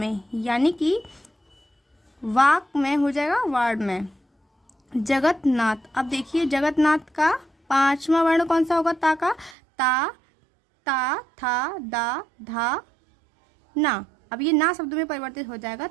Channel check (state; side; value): drops out; left; at 9.6 s